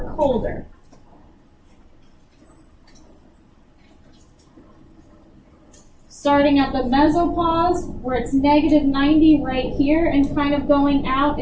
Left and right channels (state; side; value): identical; both; correlation 1.00